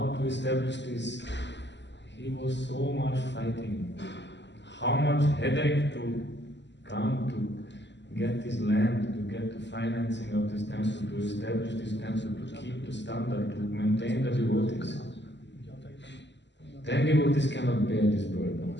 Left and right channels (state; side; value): late; right; 0.51 ms